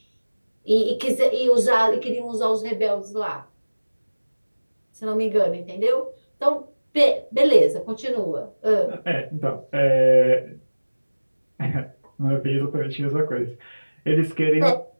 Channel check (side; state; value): both; inverted; correlation -1.00